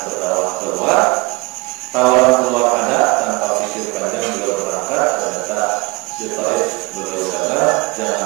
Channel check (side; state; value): left; quieter; 25.4 dB